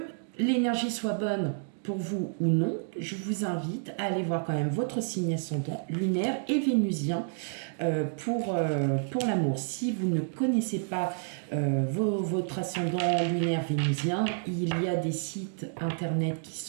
l'énergie soit bonne pour vous ou non, je vous invite à aller voir quand même votre signe ascendant lunaire et vénusien pour l'amour. Si vous ne connaissez pas votre ascendant lunaire vénusien, il y a des sites internet qui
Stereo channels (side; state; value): left; silent; digital silence